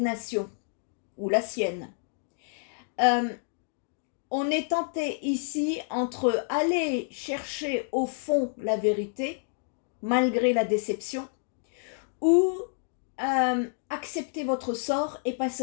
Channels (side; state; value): right; silent; digital silence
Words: ou la sienne. On est tenté ici entre aller chercher au fond la vérité, malgré la déception, ou accepter votre sort et passer